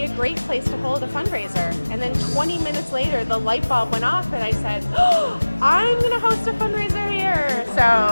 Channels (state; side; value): inverted; both; correlation -1.00